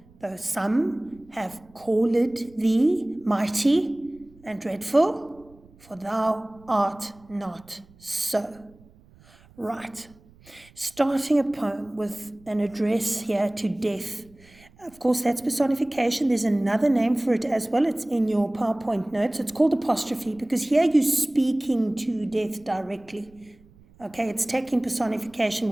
though some have called thee mighty and dreadful, for thou art not so. Right. Starting a poem with an address here to death. Of course, that's personification. There's another name for it as well. It's in your PowerPoint notes. It's called apostrophe, because here you're speaking to death directly. Okay, it's taking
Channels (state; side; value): noise; right; rumble, 27 dB below the sound